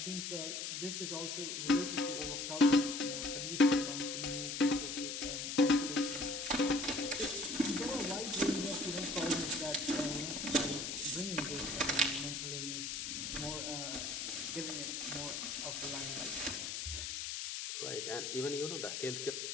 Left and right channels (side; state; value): left; noise; hiss, 4 dB below the sound